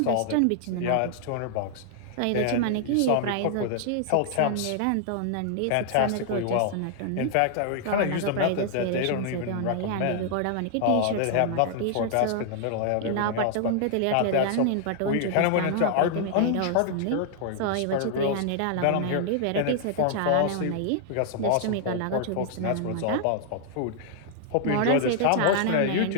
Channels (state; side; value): different; both; correlation -0.01